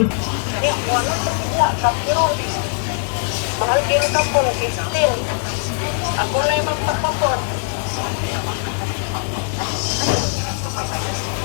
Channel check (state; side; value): silent; right; 65 dB below the other